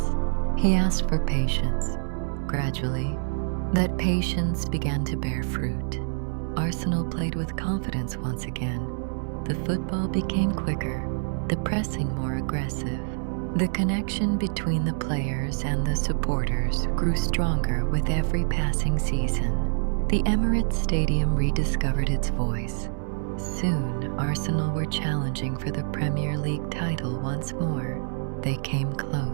He asked for patience. Gradually, that patience began to bear fruit. Arsenal played with confidence once again. The football became quicker, the pressing more aggressive. The connection between the players and the supporters grew stronger with every passing season. The Emirates Stadium rediscovered its voice. Soon, Arsenal were challenging for the Premier League title once more. They came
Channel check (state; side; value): silent; left; 61 dB below the other